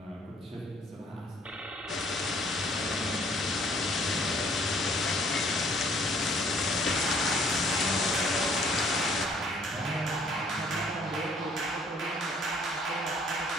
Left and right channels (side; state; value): both; normal; correlation 0.60